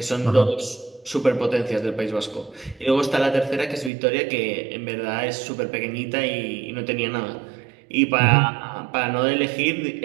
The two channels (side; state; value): left; drops out; at 3.9 s